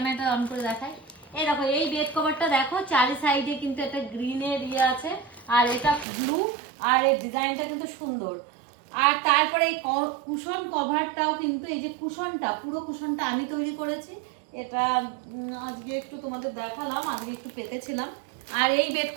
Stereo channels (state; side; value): drops out; left; at 6.1 s